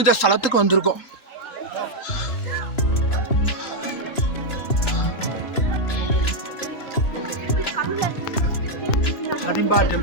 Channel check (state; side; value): late; right; 2.9 ms